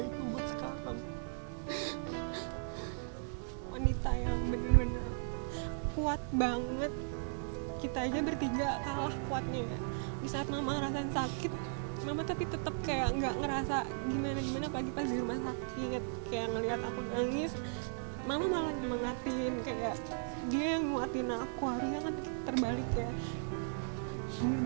itu buat sekarang. Wanita yang bener-bener kuat banget. Kita aja bertiga kalah kuatnya ya. Di saat mama ngerasain sakit, mama tapi tetap kayak nggak ngerasa gimana pagi pas di rumah sakit. Kayak ngelihat aku nangis, mama malah nyemangatin, kayak dia yang nguatin aku. Harusnya kan terbalik ya.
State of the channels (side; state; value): left; silent; digital silence